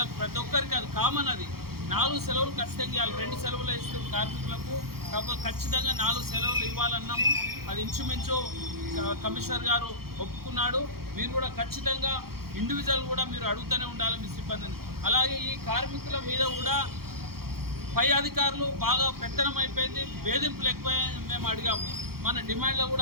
ప్రతి ఒక్కరికి అది కామన్, అది 4 సెలవులు ఖచ్చితంగా ఇవ్వాలి. 2 సెలవులు ఇస్తూ కార్మికులకు కాకపోతే ఖచ్చితంగా 4 సెలవులు ఇవ్వాలన్నాము. అది ఇంచుమించు కమిషనర్ గారు ఒప్పుకున్నాడు. మీరు కూడా ఖచ్చితంగా ఇండివిజువల్ కూడా మీరు అడుగుతూనే ఉండాలి మీ సిబ్బందిని. అలాగే ఈ కార్మికుల మీద కూడా పై అధికారులు బాగా పెత్తనం అయిపోయింది, వేధింపులు ఎక్కువైంది. మేము అడిగాము, మన డిమాండ్లో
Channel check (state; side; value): late; left; 0.94 ms